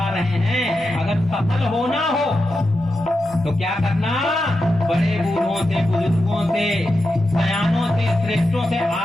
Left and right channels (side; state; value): both; normal; correlation 0.89